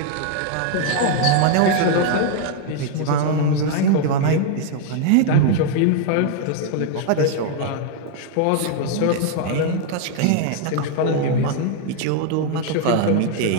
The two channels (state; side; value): different; both; correlation 0.00